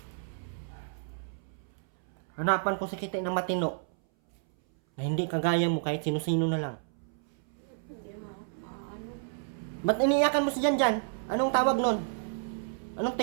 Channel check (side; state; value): left; silent; 57 dB below the other